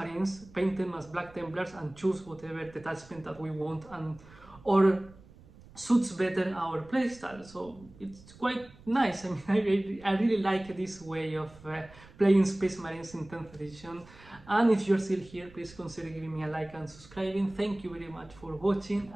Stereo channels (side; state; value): right; noise; rumble, 22 dB below the sound